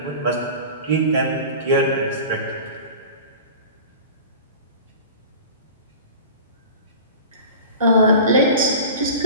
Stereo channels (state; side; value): inverted; both; correlation -0.36